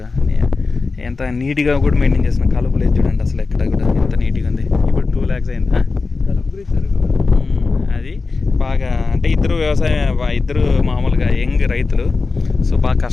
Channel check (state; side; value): quieter; right; 4.1 dB